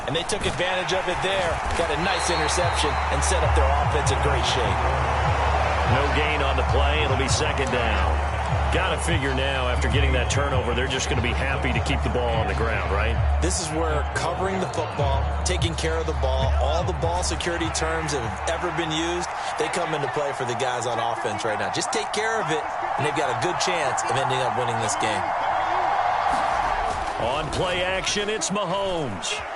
And they took advantage of it there, got a nice interception, and set up their offense in great shape. No gain on the play. It'll be 2nd down. Got to figure now, after getting that turnover, they're just going to be happy to keep the ball on the ground, right? This is where covering the football, taking care of the ball, all the ball security terms that have ever been used, they come into play for the guys on offense right now. Just take care of it, and they've got a good chance of ending up winning this game. On play action, it's Mahomes.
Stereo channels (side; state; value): both; identical; correlation 1.00